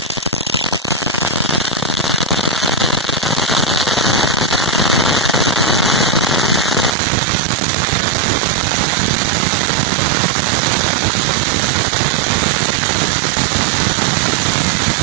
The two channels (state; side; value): drops out; left; at 7.0 s